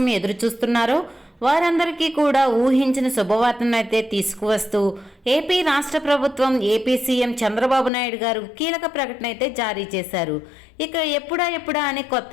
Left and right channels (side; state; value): right; drops out; at 7.9 s